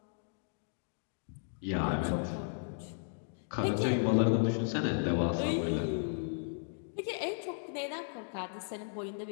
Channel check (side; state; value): right; silent; digital silence